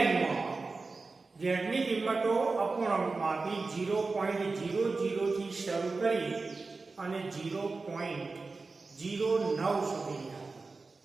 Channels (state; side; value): quieter; left; 3.9 dB